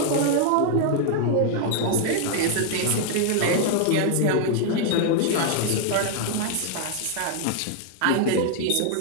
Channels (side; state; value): both; different; correlation 0.00